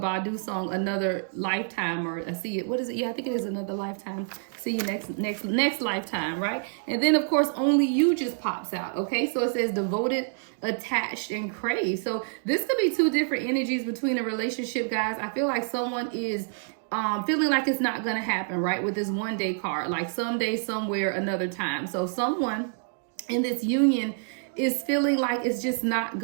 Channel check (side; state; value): left; silent; digital silence